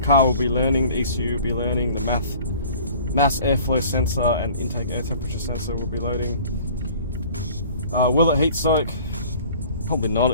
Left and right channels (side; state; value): both; inverted; correlation -0.48